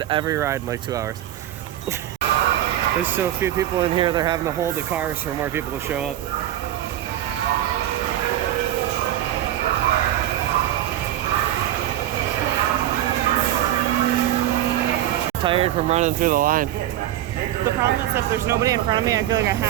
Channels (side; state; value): left; quieter; 12.8 dB